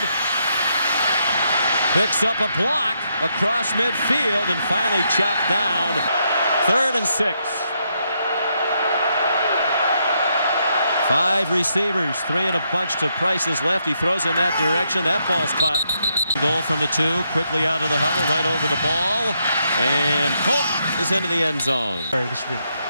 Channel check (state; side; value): inverted; both; correlation -0.78